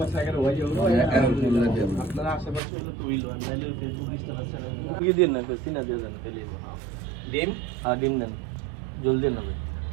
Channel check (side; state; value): left; drops out; at 2.6 s